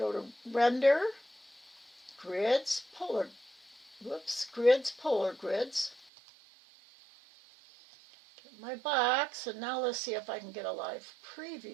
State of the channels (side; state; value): left; drops out; at 6.1 s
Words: to Render, Grids, Grids, Polar Grids. Get my box, and now let's see if I can get a live